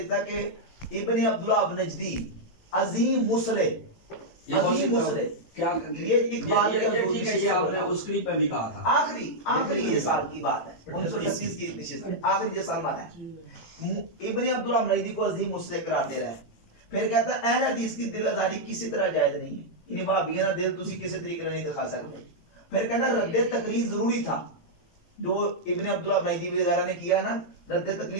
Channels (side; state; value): right; late; 18 ms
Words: ہے کہ ابن عبداللہ نجدی عظیم مصلح، یہ عظیم مصلح، کیا یہ اقبال کے ٹھیک ہے، یہ آپ نے اس کلپ میں بھی کہا تھا. آخری یہ سال کی بات ہے، 1938 کی نشست ہے، آخری یہ سال مانا ہے. ابن عبداللہ نجدی کو عظیم مصلح قرار دے رہا ہے. پھر کہتا ہے اہل حدیث کی دل آزاری کسی طرح جائز نہیں ہے، یعنی وہابیوں کا دل تسی کسی طریقے نہیں دکھا سکتے. پھر کہنا رد تقلید ضروری تھا، جو ابن عبداللہ نجدی وغیرہ نے کیا نا، رد